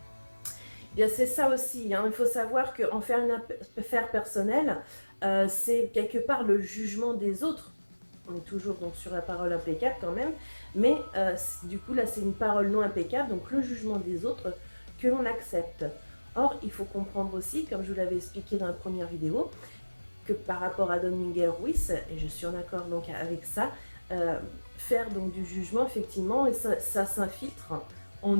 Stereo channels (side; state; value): both; inverted; correlation -1.00